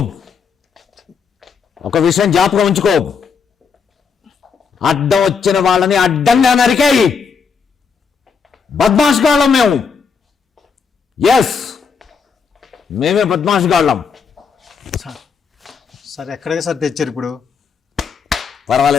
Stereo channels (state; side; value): quieter; right; 5.9 dB